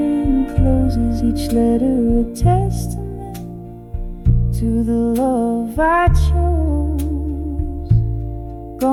closes. Each letter a testament to the love I chose,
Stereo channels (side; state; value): both; identical; correlation 1.00